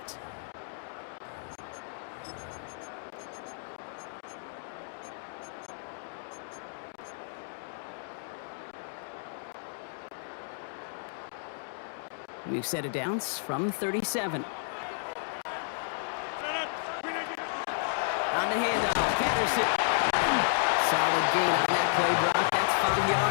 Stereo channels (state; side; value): silent; right; digital silence